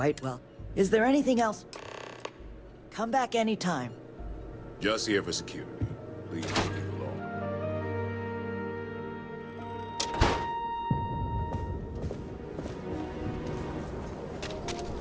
well. Is there anything else? Come back anytime. Just here for security. Please leave alone.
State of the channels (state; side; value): identical; both; correlation 1.00